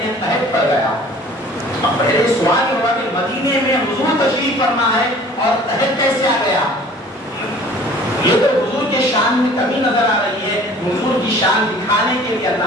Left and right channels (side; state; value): both; normal; correlation 0.49